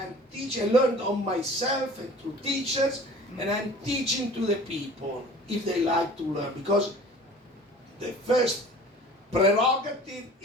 teaching. I learned on myself and through teachers. And I'm teaching to the people if they like to learn. Because the first prerogative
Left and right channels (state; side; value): normal; both; correlation 0.45